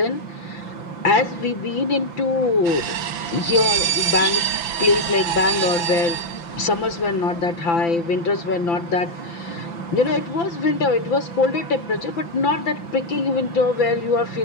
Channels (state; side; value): late; right; 5.9 ms